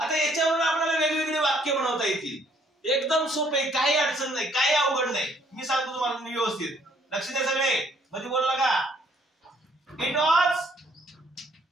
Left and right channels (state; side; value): normal; both; correlation 0.64